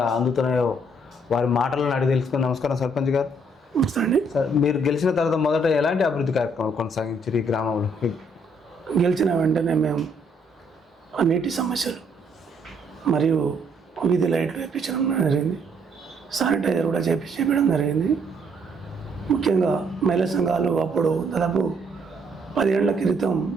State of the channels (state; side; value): normal; both; correlation 0.68